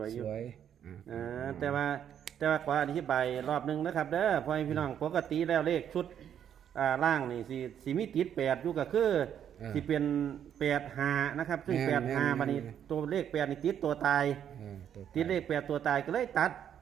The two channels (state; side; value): quieter; left; 9.3 dB